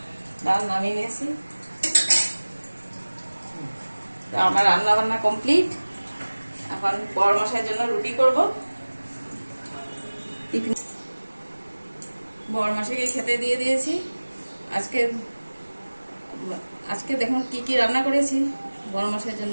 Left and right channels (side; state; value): both; inverted; correlation -1.00